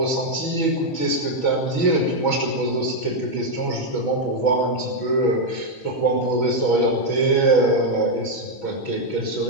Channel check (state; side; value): late; right; 6.1 ms